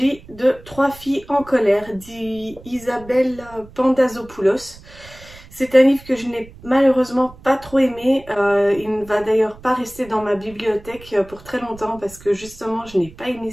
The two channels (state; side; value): noise; right; rumble, 20 dB below the sound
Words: de Trois filles en colère d'Isabelle Pandazopoulos. C'est un livre que je n'ai malheureusement pas trop aimé. Il ne va d'ailleurs pas rester dans ma bibliothèque pour très longtemps parce que justement je n'ai pas aimé